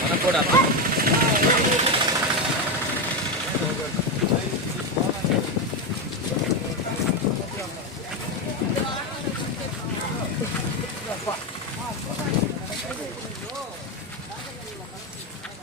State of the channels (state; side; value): normal; both; correlation 0.10